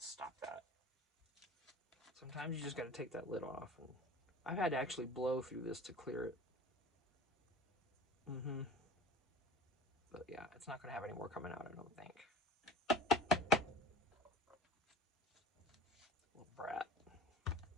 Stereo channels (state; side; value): normal; both; correlation 0.40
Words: that. Sometimes you just got to take that lid off. And I've had to actually blow through this to clear it. But yeah, it's not going to have any more coming out, I don't think. Little brat. Okay,